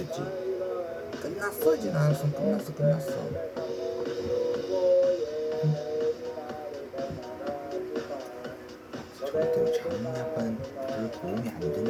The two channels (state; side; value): identical; both; correlation 1.00